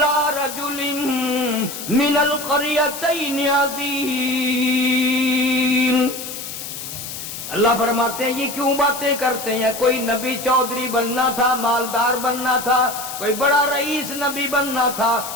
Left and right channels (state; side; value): noise; left; hiss, 9 dB below the sound